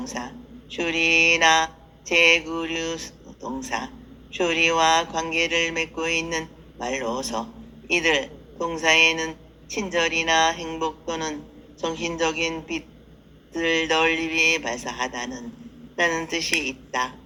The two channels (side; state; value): both; identical; correlation 1.00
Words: 슈리나 제9류 동사, 슈리와 관계를 맺고 있는 말로서 이들 동사에는 친절이나 행복 또는 정신적인 빛을 널리 발사하다는 라는 뜻이 있다.